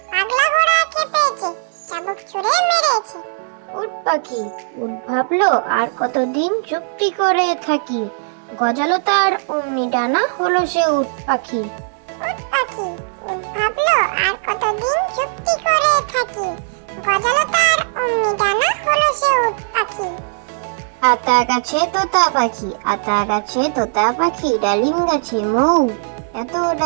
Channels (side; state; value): left; silent; 67 dB below the other